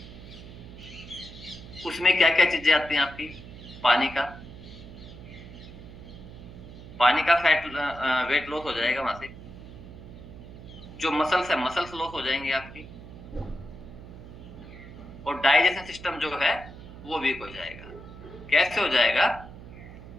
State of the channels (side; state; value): right; noise; hum, 15 dB below the sound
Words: उसमें क्या क्या चीजें आती हैं आपकी? पानी का पानी का फैट वेट लॉस हो जाएगा वहां से। जो मसल्स है, मसल्स लॉस हो जाएंगे आपकी। और डाइजेशन सिस्टम जो है वो वीक हो जाएगा। कैसे हो जाएगा?